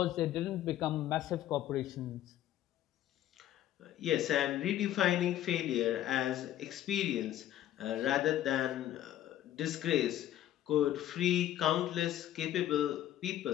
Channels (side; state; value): right; quieter; 12.5 dB